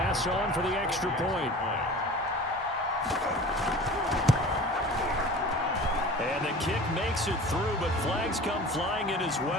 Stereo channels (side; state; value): both; normal; correlation 0.40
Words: on for the extra point. And the kick makes it through, but flags come flying in as